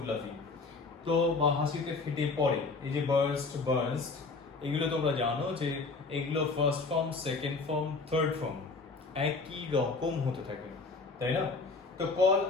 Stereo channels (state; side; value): quieter; right; 4.0 dB